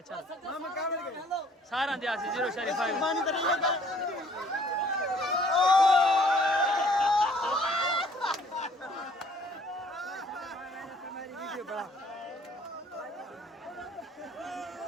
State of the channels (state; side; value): normal; both; correlation 0.58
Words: चल मामा का बैठ गया सारा दिया से 0 शरीफ भाई पानी तो नहीं है